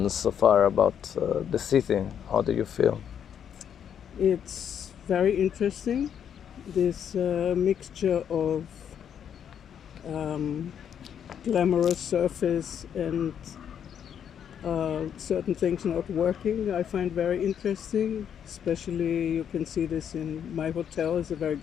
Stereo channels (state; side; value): quieter; right; 8.6 dB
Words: so far about the city? How do you feel? It's very interesting, this mixture of glamorous surface and certain things not working. I find very interesting, especially you can see this in my hotel is a very